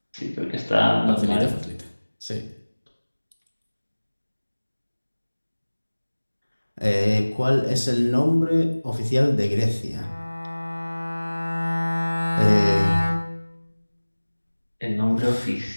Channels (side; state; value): both; inverted; correlation -1.00